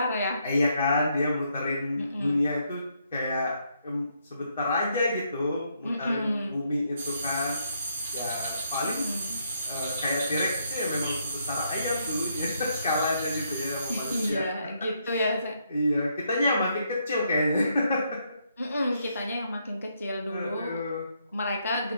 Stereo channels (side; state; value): both; inverted; correlation -0.75